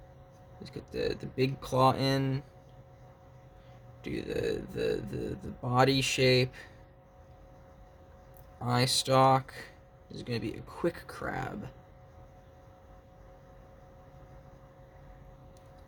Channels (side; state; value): both; identical; correlation 1.00